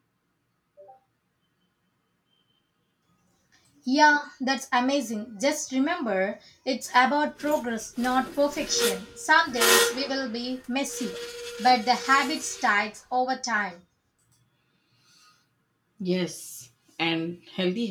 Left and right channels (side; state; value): both; identical; correlation 1.00